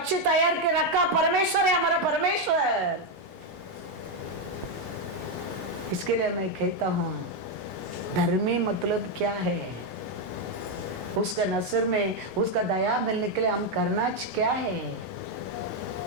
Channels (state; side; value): normal; both; correlation 0.04